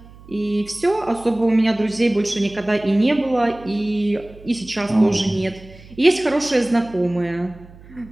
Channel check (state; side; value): noise; right; hum, 21 dB below the sound